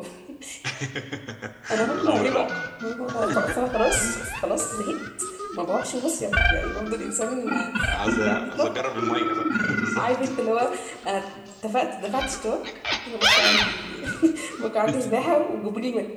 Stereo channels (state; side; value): identical; both; correlation 1.00